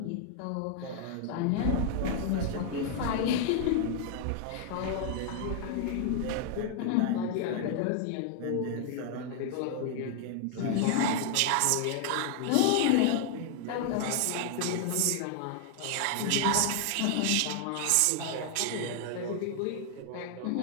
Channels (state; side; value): different; both; correlation 0.00